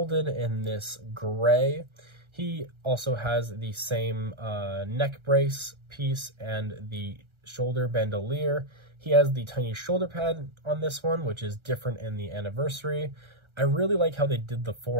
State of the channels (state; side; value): late; left; 1.3 ms